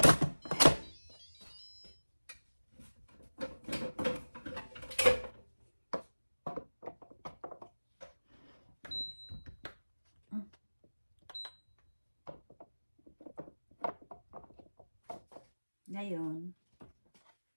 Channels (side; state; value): both; inverted; correlation -1.00